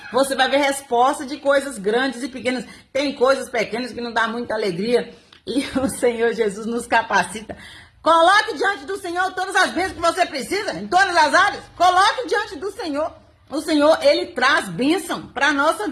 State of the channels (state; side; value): identical; both; correlation 1.00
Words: Você vai ver resposta de coisas grandes e pequenas. Tem coisas pequenas que não dá muita alegria e o Senhor Jesus nos capacita. Coloque diante do Senhor todas as bênçãos que você precisa, em todas as áreas. Coloque diante do Senhor. O Senhor, Ele traz bênção para a nossa